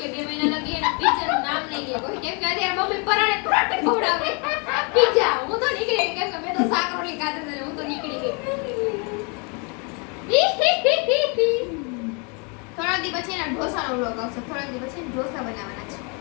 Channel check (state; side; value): quieter; right; 33.4 dB